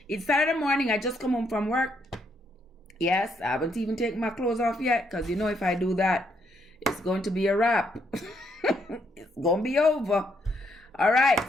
It's Saturday morning. I just come home from work. Yes, I haven't even taken my clothes off yet because you know if I do that, it's going to be a wrap. It's going to be over. All right.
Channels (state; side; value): normal; both; correlation 0.74